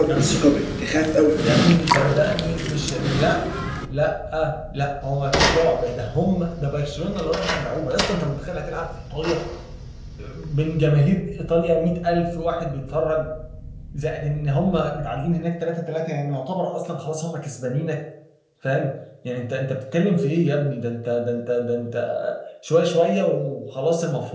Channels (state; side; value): identical; both; correlation 1.00